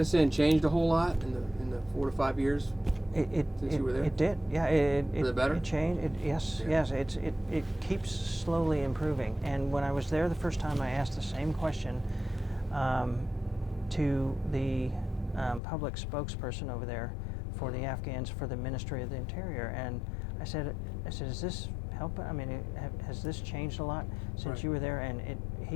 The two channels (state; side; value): drops out; right; at 15.6 s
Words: changed a whole lot in the 4 to 5 years since you were there? It did. Yeah, For the better? it changed. Yes, Yeah. yes. It keeps slowly improving. And when I was there the first time, I asked the same question to the public spokesperson over there for the Afghans for the Ministry of the Interior, and I said, is this helping? I mean, has this changed a lot since Right. you were there? And